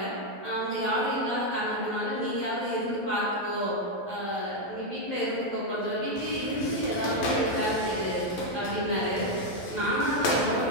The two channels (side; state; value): right; late; 12 ms